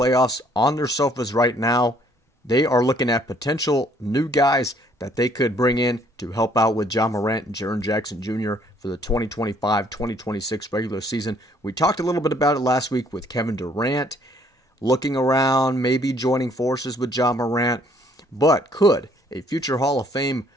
on their sofas right now. They are looking at potential new guys that they could bring in to help out with Ja Morant and Jaren Jackson Jr. for the 2025-2026 regular season. We talked a little bit about it last week with Kevin Durant looking around, maybe joining forces with Ja Morant. But could a future Hall of Fame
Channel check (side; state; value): both; normal; correlation 0.63